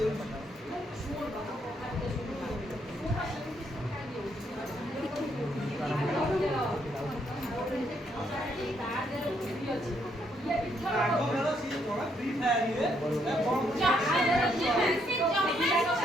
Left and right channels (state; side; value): normal; both; correlation 0.73